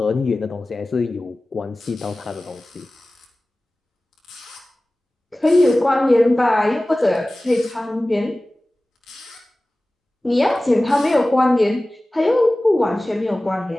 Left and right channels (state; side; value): normal; both; correlation 0.97